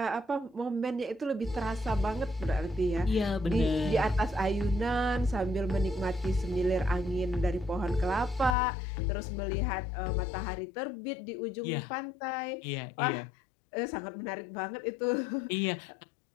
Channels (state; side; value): drops out; right; at 8.6 s